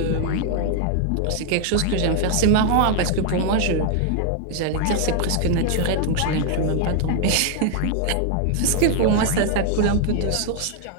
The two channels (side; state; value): both; different; correlation 0.00